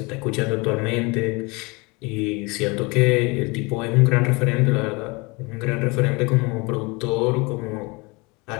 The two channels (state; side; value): quieter; right; 27.0 dB